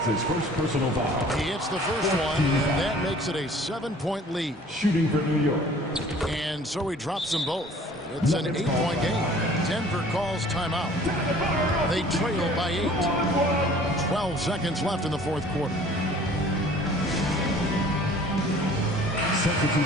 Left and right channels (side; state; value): both; normal; correlation 0.50